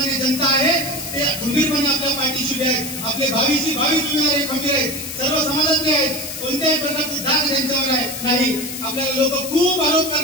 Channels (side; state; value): left; noise; hiss, 8 dB below the sound